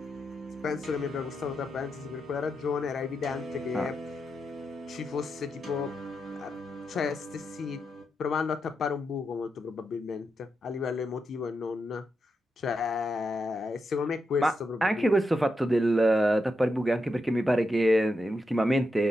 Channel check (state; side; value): normal; both; correlation 0.86